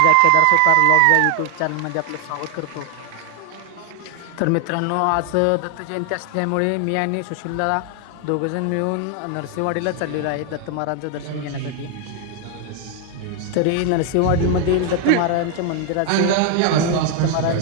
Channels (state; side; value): different; both; correlation 0.00